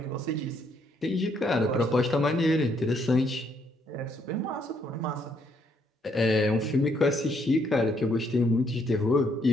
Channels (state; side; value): normal; both; correlation 0.71